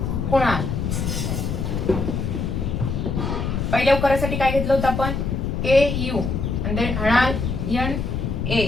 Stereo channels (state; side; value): noise; left; rumble, 1 dB below the sound